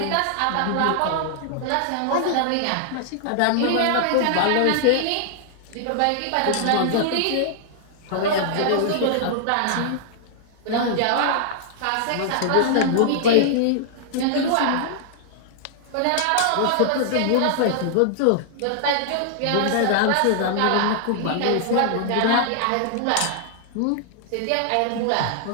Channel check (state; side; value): different; both; correlation -0.01